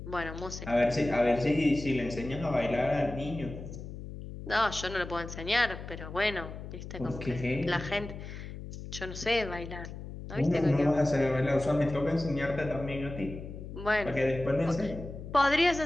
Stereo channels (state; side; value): noise; left; hum, 10 dB below the sound